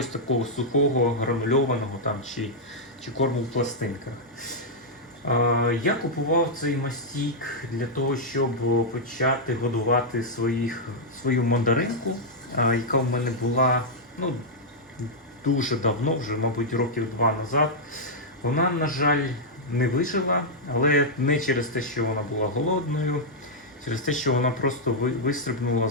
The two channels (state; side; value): normal; both; correlation -0.05